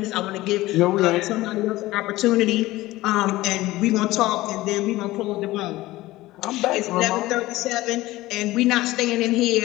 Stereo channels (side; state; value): right; quieter; 17.9 dB